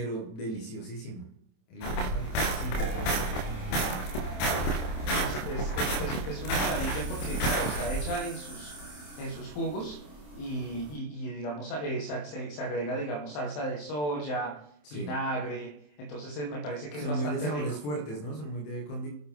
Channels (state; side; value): late; right; 27 ms